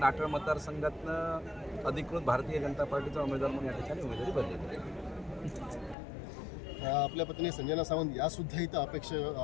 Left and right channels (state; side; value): drops out; right; at 6.0 s